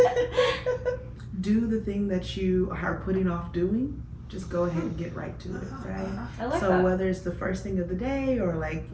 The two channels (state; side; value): identical; both; correlation 1.00